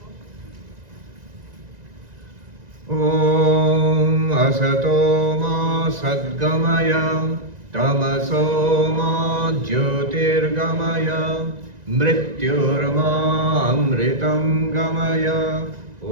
Om Asato Ma Sadgamaya Tamaso Ma Jyotirgamaya Mrityurma Amritam Gamaya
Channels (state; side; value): late; left; 1.9 ms